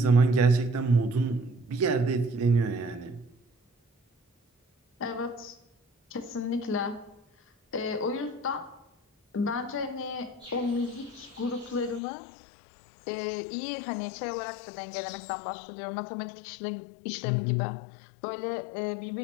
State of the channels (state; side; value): drops out; right; at 12.0 s